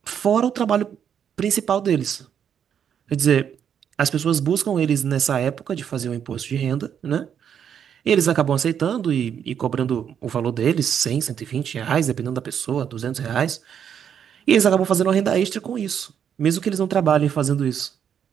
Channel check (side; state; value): left; quieter; 8.4 dB